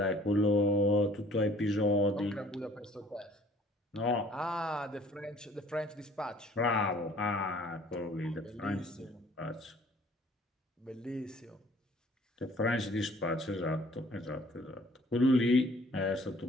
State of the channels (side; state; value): both; normal; correlation 0.55